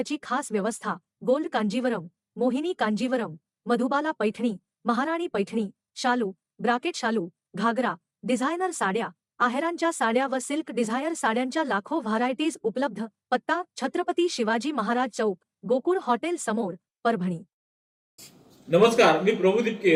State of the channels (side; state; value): both; identical; correlation 1.00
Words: खास व्यवस्था। गोल्ड कांजीवरम, मोहिनी कांजीवरम, मधुबाला पैठणी, महाराणी पैठणी, शालू, ब्राकेट शालू, घागरा, डिझायनर साड्या, आहेरांच्या साड्या व सिल्क डिझायर साड्यांच्या लाखो व्हरायटीज उपलब्ध। पत्ता: छत्रपती शिवाजी महाराज चौक, गोकुळ हॉटेल समोर, परभणी। नमस्कार, मी प्रभू